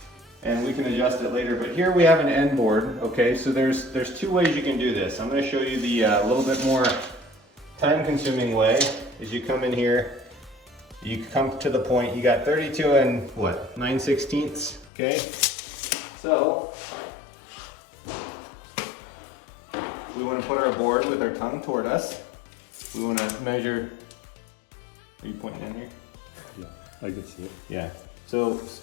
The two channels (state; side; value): drops out; right; at 14.9 s